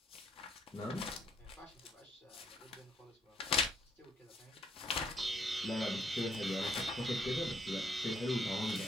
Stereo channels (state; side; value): normal; both; correlation 0.70